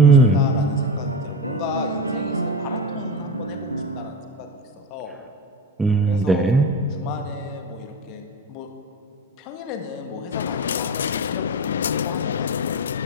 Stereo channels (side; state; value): both; normal; correlation 0.23